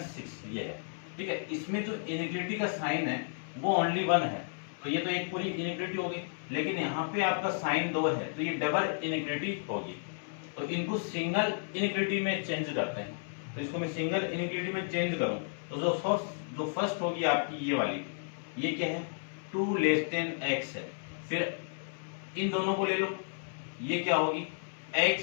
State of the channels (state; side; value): silent; right; 56 dB below the other